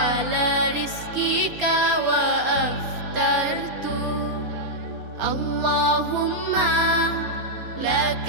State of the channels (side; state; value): left; late; 4.3 ms